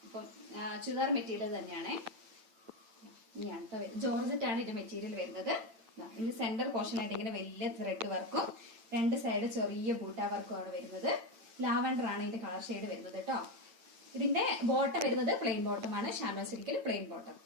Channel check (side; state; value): left; late; 8.9 ms